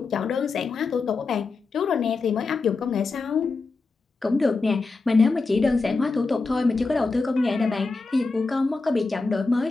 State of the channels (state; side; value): quieter; right; 3.9 dB